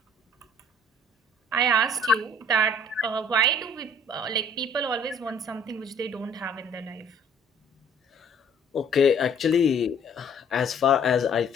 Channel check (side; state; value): both; normal; correlation 0.55